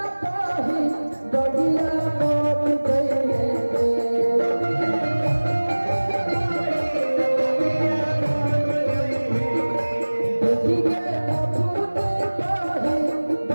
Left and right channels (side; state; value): both; inverted; correlation -1.00